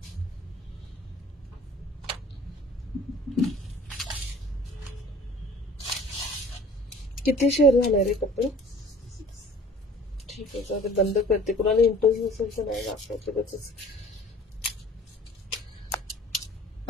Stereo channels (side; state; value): both; normal; correlation 0.48